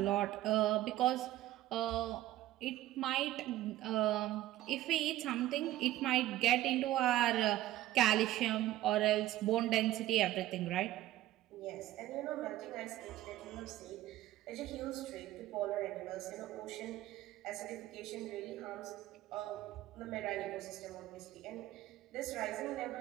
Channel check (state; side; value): quieter; left; 15.0 dB